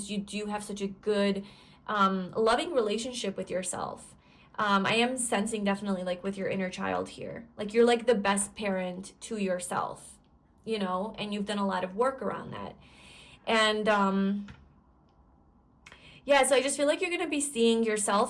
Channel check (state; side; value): identical; both; correlation 1.00